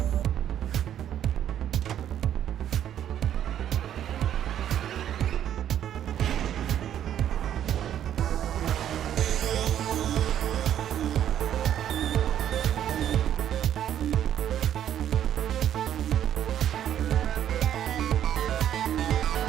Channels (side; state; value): left; quieter; 10.4 dB